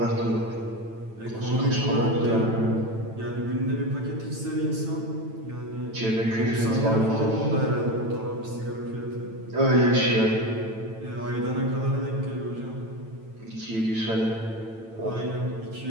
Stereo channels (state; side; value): late; left; 9.0 ms